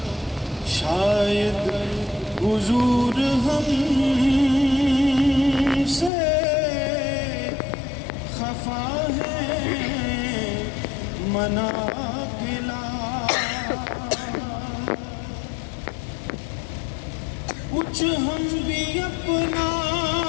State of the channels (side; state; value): right; drops out; at 6.1 s